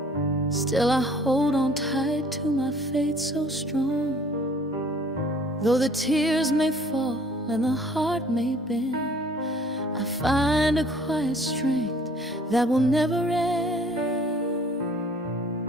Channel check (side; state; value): both; normal; correlation 0.55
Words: Still I hold on tight to my faith so strong. Though the tears may fall and the heart may bend, I find a quiet strength that will never end.